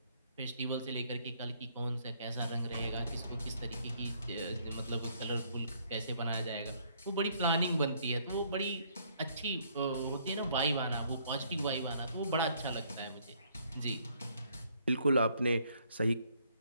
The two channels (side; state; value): both; inverted; correlation -0.66